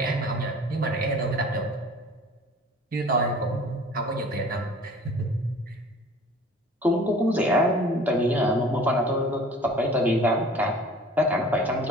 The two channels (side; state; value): both; normal; correlation 0.46